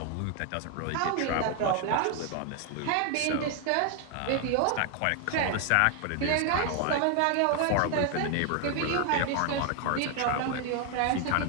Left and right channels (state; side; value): different; both; correlation 0.01